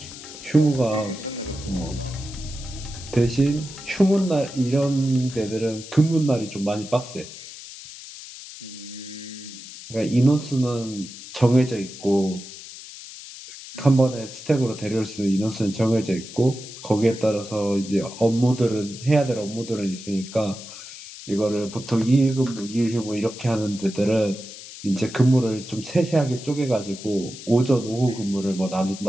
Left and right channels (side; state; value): left; noise; hiss, 14 dB below the sound